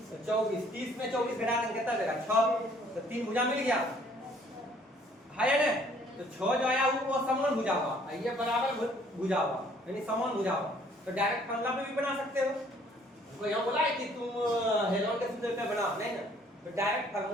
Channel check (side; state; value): both; normal; correlation 0.60